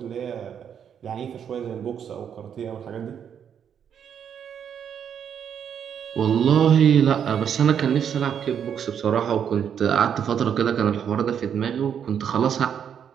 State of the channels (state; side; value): quieter; left; 8.3 dB